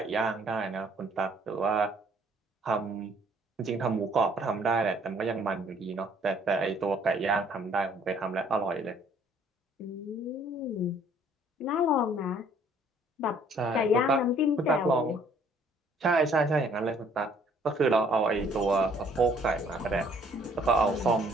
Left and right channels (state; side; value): normal; both; correlation 0.60